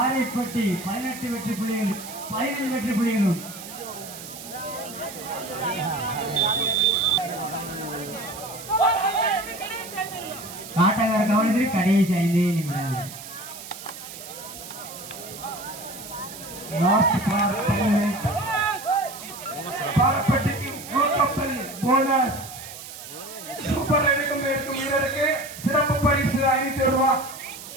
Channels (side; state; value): right; noise; hiss, 13 dB below the sound